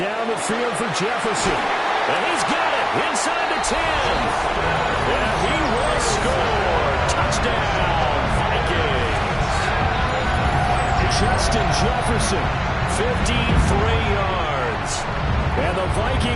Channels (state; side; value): identical; both; correlation 1.00